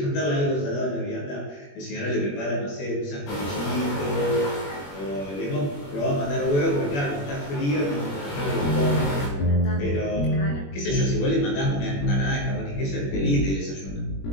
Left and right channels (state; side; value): late; right; 21 ms